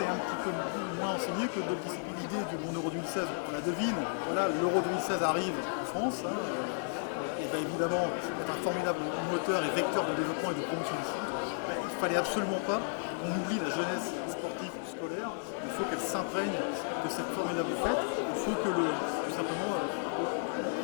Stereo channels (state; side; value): silent; right; 56 dB below the other